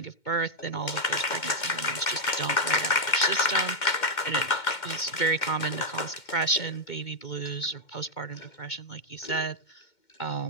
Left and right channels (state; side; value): late; right; 2.2 ms